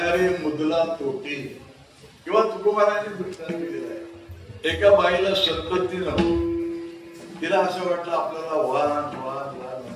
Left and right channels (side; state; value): both; identical; correlation 1.00